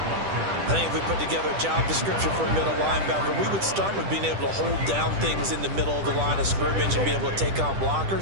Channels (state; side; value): late; left; 10 ms